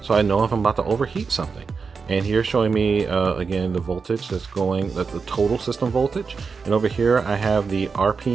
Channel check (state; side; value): quieter; left; 5.1 dB